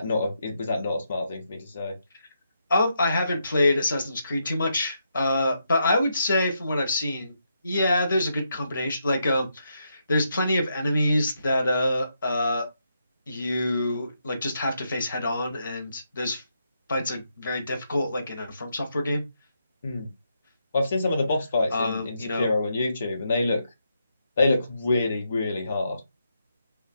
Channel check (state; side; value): inverted; both; correlation -0.81